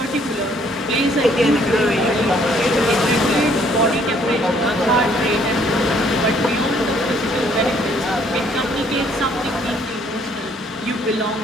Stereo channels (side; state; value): both; normal; correlation 0.64